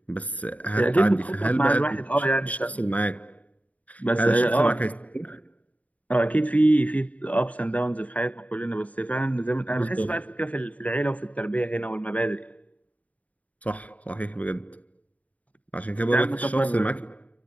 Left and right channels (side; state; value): right; late; 0.070 ms